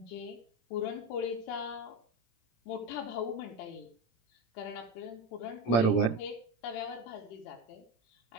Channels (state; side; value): late; right; 17 ms